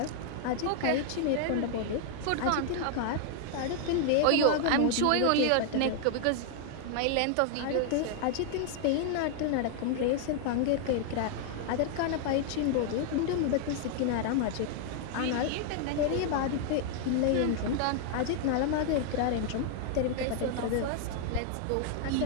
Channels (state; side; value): different; both; correlation 0.00